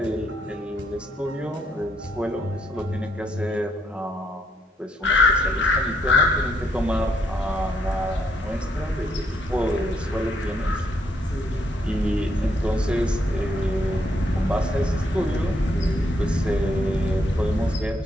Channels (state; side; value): normal; both; correlation 0.73